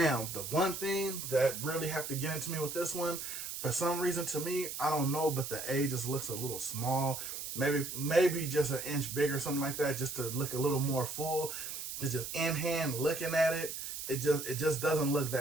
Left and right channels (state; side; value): noise; right; hiss, 6 dB below the sound